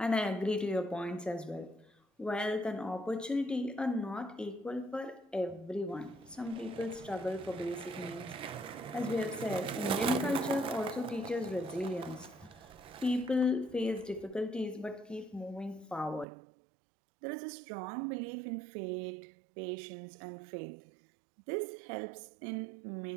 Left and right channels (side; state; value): left; drops out; at 16.2 s